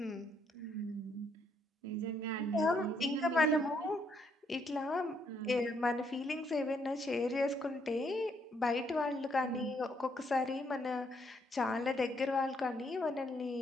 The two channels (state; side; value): normal; both; correlation 0.72